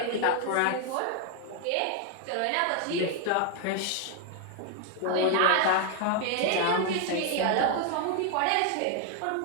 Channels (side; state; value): both; different; correlation 0.00